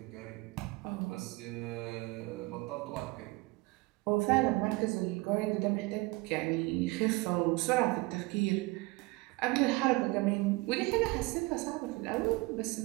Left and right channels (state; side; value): quieter; left; 22.9 dB